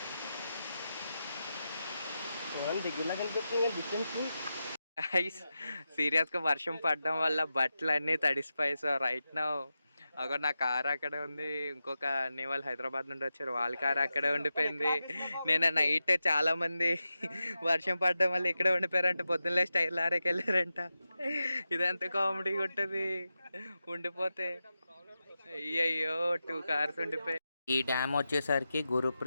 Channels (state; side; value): inverted; both; correlation -0.91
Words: సీరియస్గా వర్షం పడడం వల్ల బట్టలు అన్నీ తడిసిపోయి. సో రైట్ నౌ అక్కడ నా కార్ అక్కడే ఉంది, ఇంకొక అన్ని వాళ్ళు హైదరాబాద్ నుండి వచ్చారు, వాళ్ళ కార్ అక్కడే ఉండిపోయింది. నేను నైట్ చాలా మంది వర్షం పడడం వల్ల ఇక్కడే ఉండిపోయారంట, పొద్దున్నే స్టైల్ ఆరేకి వెళ్ళారంట. ఇదంతా కామెడీగా ఉంటుంది ఉండిపోతే. అయ్యయ్యో 2 కార్స్ ఉండిపోయాయి. ఈ డ్యామ్ వచ్చేసరికి